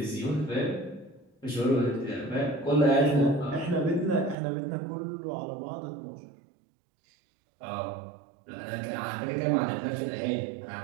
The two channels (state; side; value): drops out; left; at 4.4 s